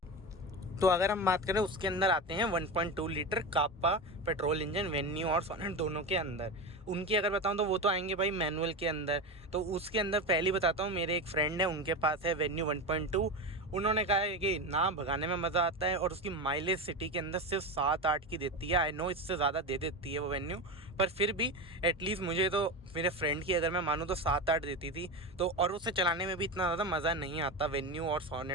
तो अगर हम बात करें उसके अंदर आते हैं 1.2 लीटर कापा पेट्रोल इंजन वेन्यू और सोनेट दोनों के अंदर। उनकी अगर बताऊं तो वो तो आएंगे भाई मैनुअल के अंदर। तो उसके अंदर पहले बताता हूँ, मेरे एक फ्रेंड है उनके पास है वेन्यू 1.2। उन्होंने कहा है कि ना भगाने में मज़ा आता है और उसकी माइलेज सिटी के अंदर सिर्फ 7-8 की देती है। आई नो इससे ज़्यादा दे देती है वो वेन्यू, पर फिर भी एटलीस्ट मुझे तो मेरे फ्रेंड की अगर मैं मानूँ तो 7-8 देती थी। तो और उसे चलाने में भी इतना ज़्यादा मज़ा नहीं आता वेन्यू और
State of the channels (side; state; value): both; normal; correlation 0.20